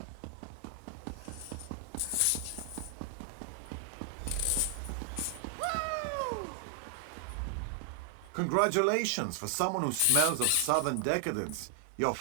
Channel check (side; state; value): both; different; correlation 0.00